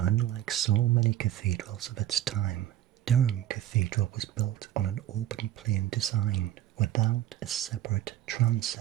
so many cathedrals of its time, Durham Cathedral was built on an open plain design without a separate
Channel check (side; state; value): left; quieter; 12.5 dB